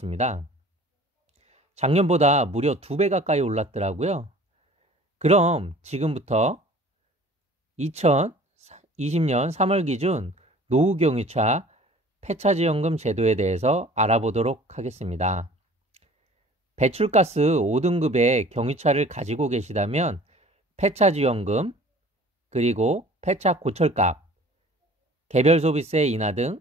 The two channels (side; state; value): both; normal; correlation 0.48